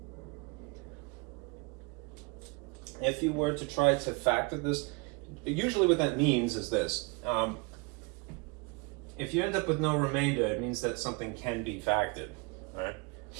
If you were to try to factor this, usually what that means is this. If you end up with no remainder, it means that something can be factored. Right?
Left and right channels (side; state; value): left; quieter; 28.8 dB